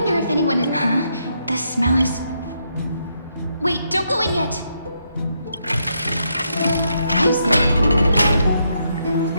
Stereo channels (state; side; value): inverted; both; correlation -0.78